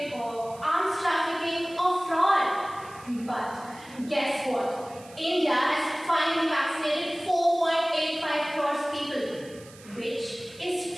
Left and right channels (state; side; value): noise; right; hiss, 21 dB below the sound